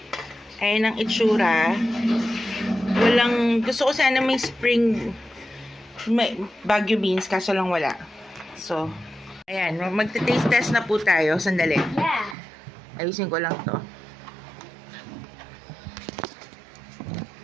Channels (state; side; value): drops out; left; at 12.4 s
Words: Ayan ang itsura. Gusto ko sana may spring, may Baguio beans, kaso lang wala. So, ayan. Magte-taste test na po tayo. Sandali. Yeah. Ayusin ko lang to.